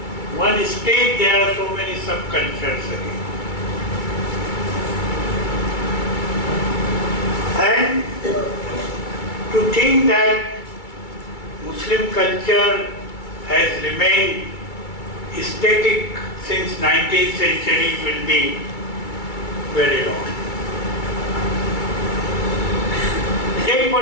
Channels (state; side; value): late; right; 2.3 ms